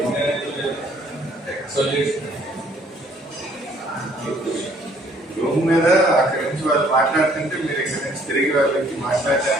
రూమ్ మీద అక్కడి నుంచి వాళ్ళు మాట్లాడుతుంటే మీరు ఇక్కడి నుంచి తిరిగి వాళ్ళకి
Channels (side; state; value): both; normal; correlation 0.62